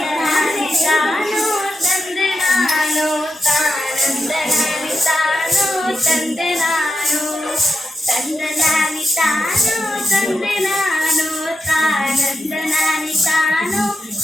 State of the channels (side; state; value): both; normal; correlation 0.87